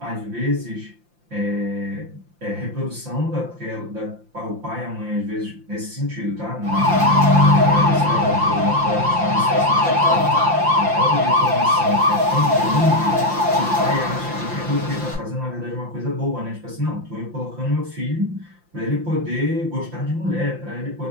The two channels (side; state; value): left; late; 5.8 ms